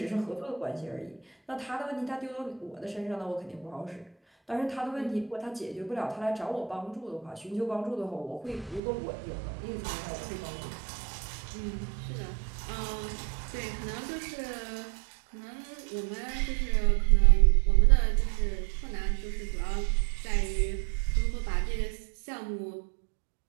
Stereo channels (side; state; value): left; drops out; at 8.8 s